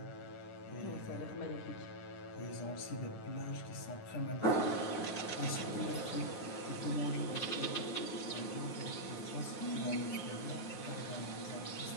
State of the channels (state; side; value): late; right; 9.7 ms